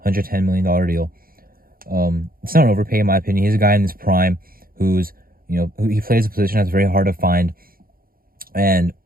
$110 million deal. It's not an overpay in my opinion. He's a guy in his prime who's, he plays a position that's very hard to find. And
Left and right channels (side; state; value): left; late; 0.42 ms